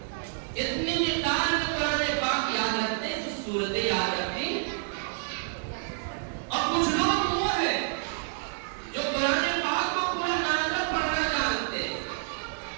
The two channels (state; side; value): silent; left; digital silence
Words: اتنی مقدار میں قرآن پاک یاد رکھتے ہیں، کچھ صورتیں یاد رکھتے ہیں۔ اور کچھ لوگ وہ ہے جو قرآن پاک